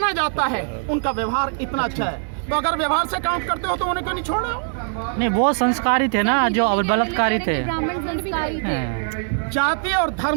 जाता है, उनका व्यवहार इतना अच्छा है। तो अगर व्यवहार से काउंट करते हो तो उन्हें क्यों नहीं छोड़ा? नहीं, वो संस्कारी थे ना, जो बलात्कारी थे। जाति और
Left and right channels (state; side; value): silent; left; digital silence